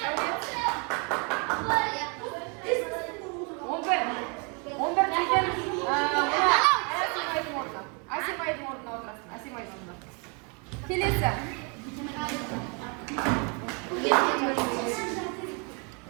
Асимайдың орнына отырасың. Асимайдың орнына. Келесі.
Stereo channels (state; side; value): quieter; left; 34.4 dB